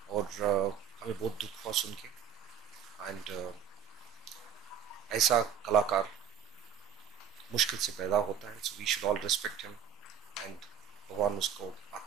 और हमें बहुत दुख हुआ सुन के। एंड ऐसा कलाकार मुश्किल से पैदा होता है, so we should all respect him and भगवान उसको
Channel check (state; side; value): quieter; left; 9.1 dB